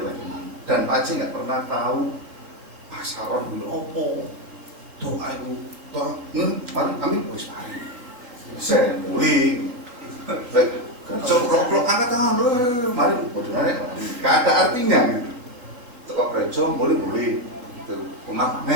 bagaimana. Dan Paci nggak pernah tahu pasaran dulu opo doa itu kami wis mari saya mulai kerja rock angkat tangan mari bodohnya nggak ada artinya gitu. Toko gereja mulai itu umat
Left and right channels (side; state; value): left; late; 4.0 ms